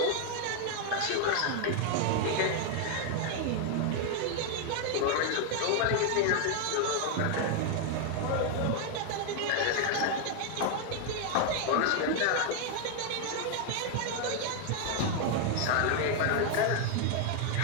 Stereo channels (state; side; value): different; both; correlation 0.00